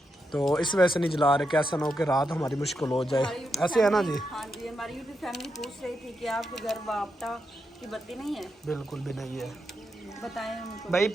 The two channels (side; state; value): both; normal; correlation 0.84